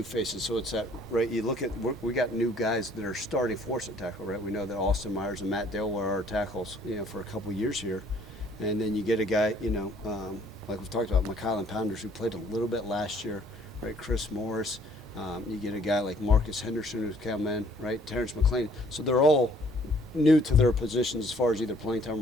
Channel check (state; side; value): normal; both; correlation 0.60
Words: faces, so it's that, right, you look at, we got new guys that are starting for us at tackle, right? We know that Austin Myers and Matt Dale were our tackles, for a couple years here. And then you get a guy, like we've talked about, McKylan Pounders, who played a little bit last year, right? Chris Morris. You get a guy like Marcus Henderson who's come in, right? Terrence McLean. So they're all new to their positions as far as either playing